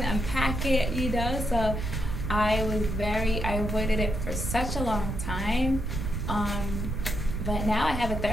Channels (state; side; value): noise; right; rumble, 3 dB below the sound